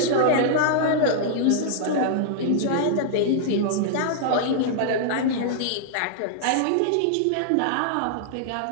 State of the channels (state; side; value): different; both; correlation -0.01